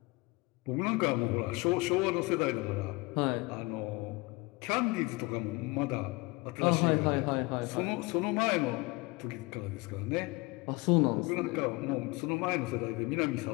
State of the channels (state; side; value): quieter; right; 24.6 dB